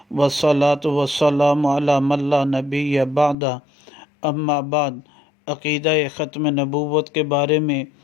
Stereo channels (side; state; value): right; drops out; at 3.4 s